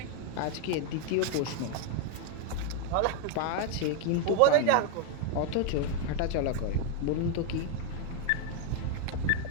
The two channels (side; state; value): both; different; correlation 0.01